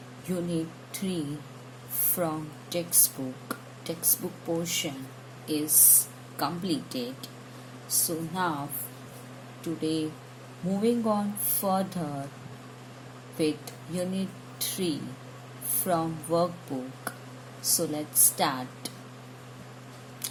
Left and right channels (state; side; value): identical; both; correlation 1.00